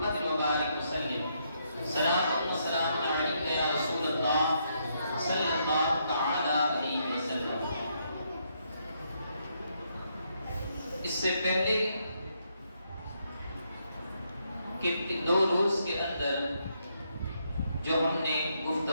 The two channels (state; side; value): inverted; both; correlation -0.77